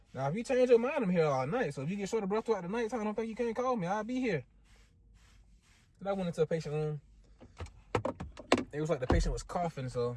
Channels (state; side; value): identical; both; correlation 1.00